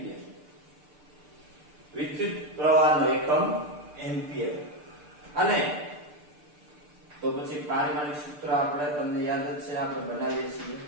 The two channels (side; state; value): left; late; 6.8 ms